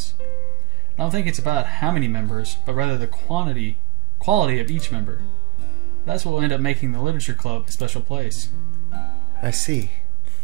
I don't think it's about how many members, but rather the quality of each member. That's what will end up making the literature club a special place. I see.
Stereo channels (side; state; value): left; quieter; 11.0 dB